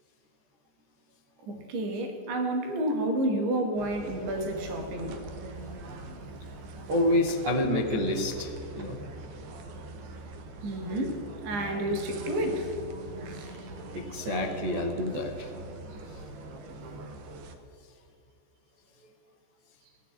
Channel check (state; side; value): late; left; 14 ms